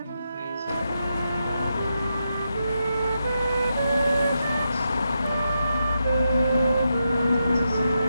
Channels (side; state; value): both; inverted; correlation -0.84